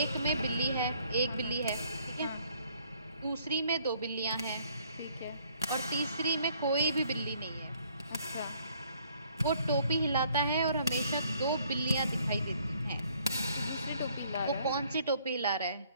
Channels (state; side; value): inverted; both; correlation -0.64